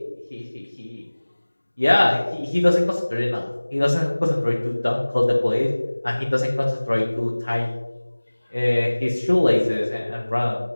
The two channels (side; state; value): both; inverted; correlation -1.00